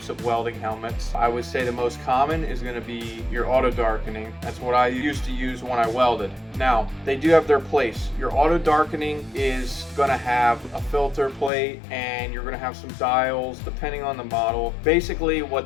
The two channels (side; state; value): right; drops out; at 11.5 s